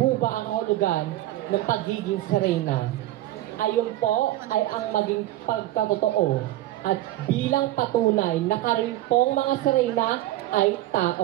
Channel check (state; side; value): quieter; left; 15.4 dB